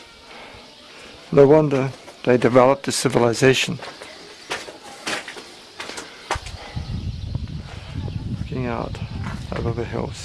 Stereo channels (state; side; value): identical; both; correlation 1.00